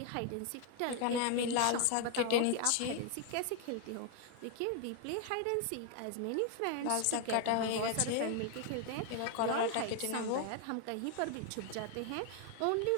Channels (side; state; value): both; different; correlation 0.00